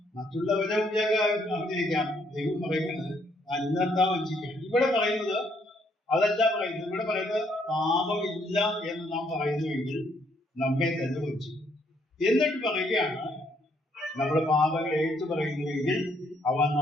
മറ്റുള്ളവരെ അഭിനയിക്കാം. ദൈവം പറയുന്നത് അന്നെന്താ വഞ്ചിക്കാം. ഇവിടെ പറയുന്നത് അതല്ല പറയുന്നത്. ഇവിടെ പറയുന്നത് പാപമില്ല എന്ന് നാം പറയുന്നുവെങ്കിൽ നമ്മെ തന്നെ വഞ്ചിക്കും. എന്നിട്ട് പറയുകയാണ് നമ്മുടെ പാപങ്ങൾ ഏറ്റു പറയുന്നുവെങ്കിൽ അവൻ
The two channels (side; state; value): both; normal; correlation 0.70